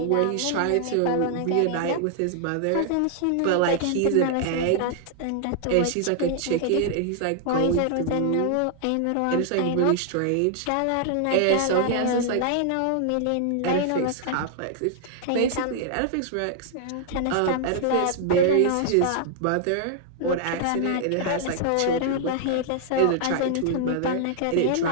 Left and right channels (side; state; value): both; different; correlation 0.00